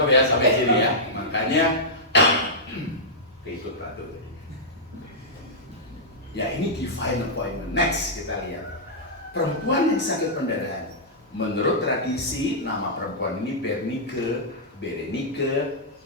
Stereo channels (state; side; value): normal; both; correlation -0.11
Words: sampai sini ya. Makanya keikut patuh. Ya ini divine appointment. Next kita lihat perempuan yang sakit pendarahan. Menurut tradisi, nama perempuan ini Berenike,